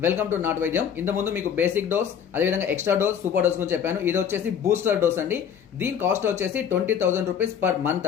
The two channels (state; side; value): quieter; right; 8.2 dB